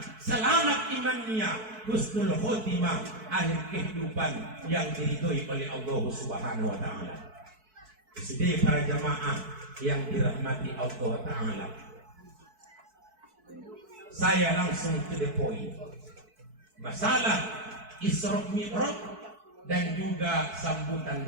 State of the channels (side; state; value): left; late; 4.6 ms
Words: Selamat imannya, husnul khotimah, akhir kehidupan yang diridhoi oleh Allah Subhanahu Wa Ta'ala. Sudah para jamaah yang dirahmati Allah Ta'ala, saya langsung to the point. Masalah Isra Mi'raj dan juga sambutan